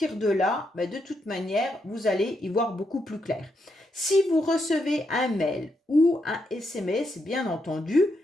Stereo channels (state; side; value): normal; both; correlation 0.81